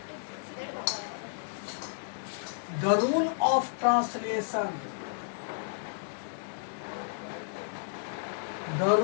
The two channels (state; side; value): silent; right; digital silence